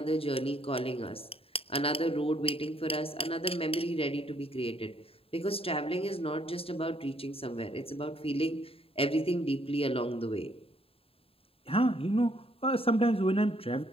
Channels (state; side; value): late; right; 0.27 ms